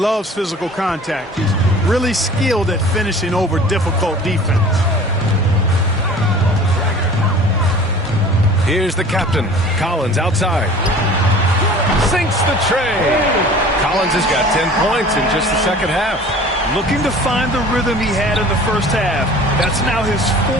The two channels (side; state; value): both; normal; correlation 0.44